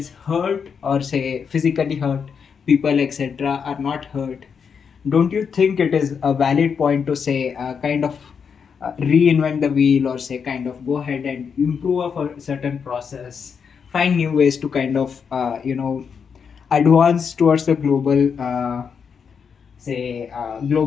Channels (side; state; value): right; quieter; 6.5 dB